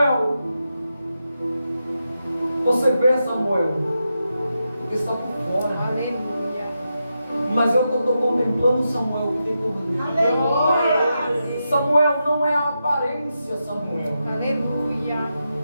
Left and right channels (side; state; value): both; inverted; correlation -0.87